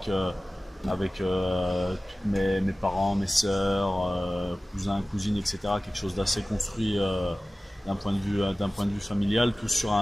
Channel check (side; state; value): both; normal; correlation 0.97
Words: mes parents, mes sœurs, cousins, cousines, etc. Quelque chose d'assez construit d'un point de vue familial, tous sur